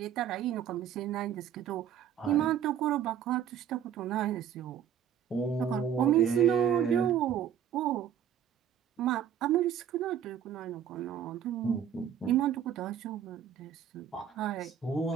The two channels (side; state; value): left; quieter; 9.2 dB